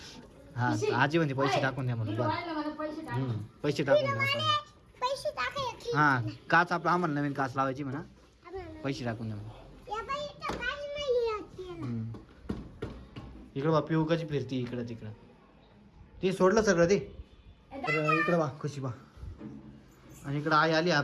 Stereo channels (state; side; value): identical; both; correlation 1.00